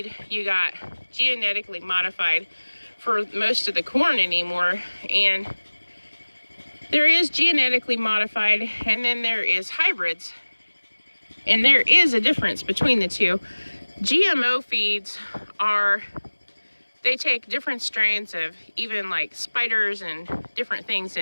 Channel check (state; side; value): inverted; both; correlation -1.00